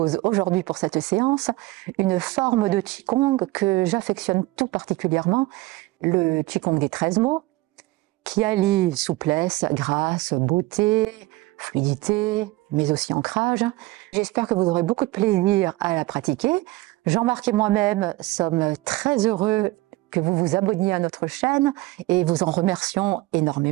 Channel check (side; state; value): left; quieter; 20.0 dB